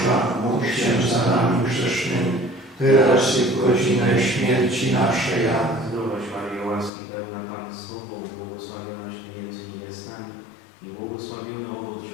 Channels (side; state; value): right; drops out; at 6.9 s